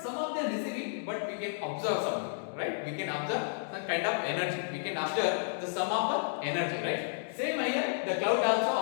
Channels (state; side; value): silent; right; digital silence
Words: some of them receiving, but we can observe something, right? We can observe some kind of energy. We can observe the sum of the energy, right? Same here, the cloud